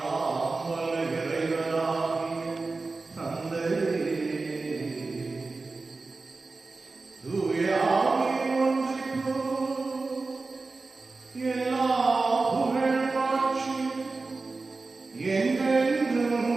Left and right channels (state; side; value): quieter; left; 3.8 dB